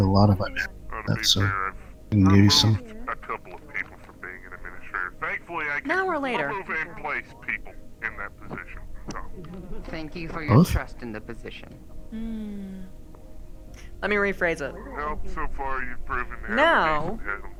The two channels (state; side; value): identical; both; correlation 1.00